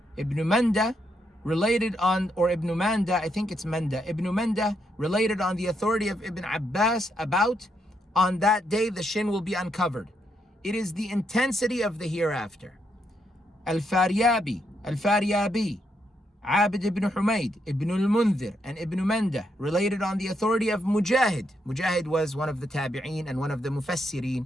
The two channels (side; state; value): both; normal; correlation 0.78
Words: Ibn Manda related on, or Ibn Manda, I think it's Manda, Ibn Manda related on the authority of Ibn Abbas about, on that day the shin will be uncovered. It is the intensity of the hereafter. Al-Faryabi, Abid ibn Humayd, Ibn al-Mundhir, and Ibn Manda related on the authority of Mujahid. Mujahid was one of the tabi'een and one of the